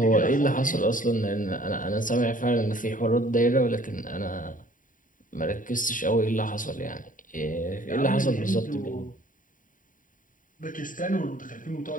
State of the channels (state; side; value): late; right; 0.39 ms